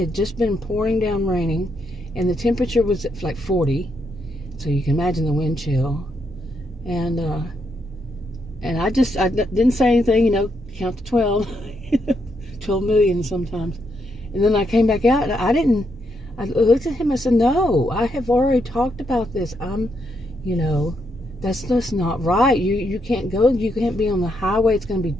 had just been pouring down raining. And the temperature was like 40. So you can imagine the wind chill. And I didn't say anything, you know, count to 12. 12 million sometimes. And then I came back out, and I looked at him and said, no, I have already talked about this. You know, that's just not right. You can't go, you can't be on the highway. It's going to be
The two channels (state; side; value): normal; both; correlation 0.78